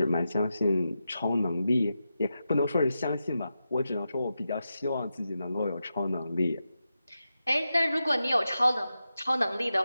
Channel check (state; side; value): inverted; both; correlation -0.89